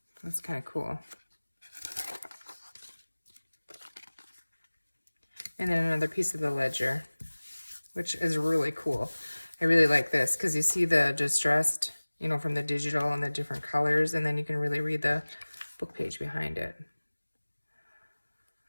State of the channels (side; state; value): both; inverted; correlation -1.00